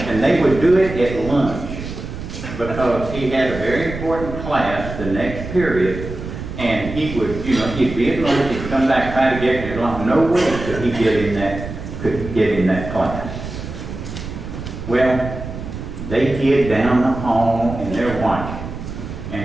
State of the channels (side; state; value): right; noise; rumble, 9 dB below the sound